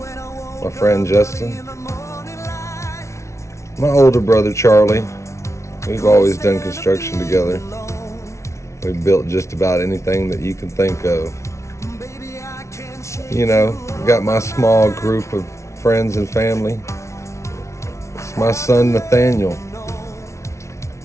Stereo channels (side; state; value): right; late; 0.14 ms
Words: my friend Justin. My older brother Charlie. We've always done construction together. We've built just about anything that you can think of. You know, got my small group of friends and family. It's my son Nathaniel,